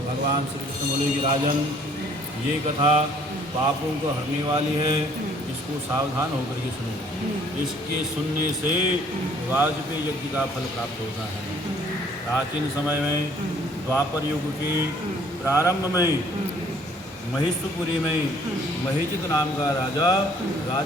भगवान श्री कृष्ण बोले कि राजन, ये कथा पापों को हरने वाली है, इसको सावधान होकर के सुनो। इसके सुनने से वाजपेयी यज्ञ का फल प्राप्त होता है। प्राचीन समय में द्वापर युग के प्रारंभ में महिषपुरी में महिषित नाम का राजा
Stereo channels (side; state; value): both; normal; correlation 0.59